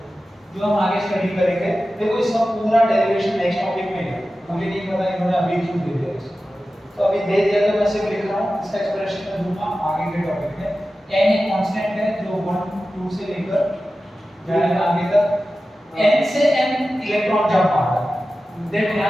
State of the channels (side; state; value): both; normal; correlation 0.94